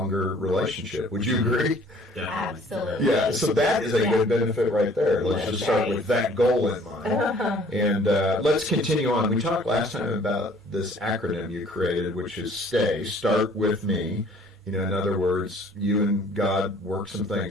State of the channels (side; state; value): both; normal; correlation 0.55